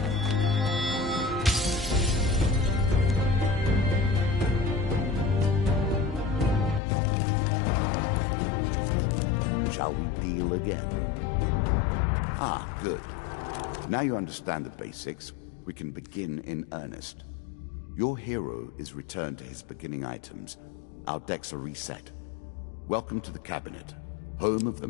Shall we deal again? Ah, good. Now you understand the basics, we can begin in earnest. Your hero is returned to his beginning items. Our decks are reset. Welcome to the cabinet, home of the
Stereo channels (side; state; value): right; drops out; at 6.8 s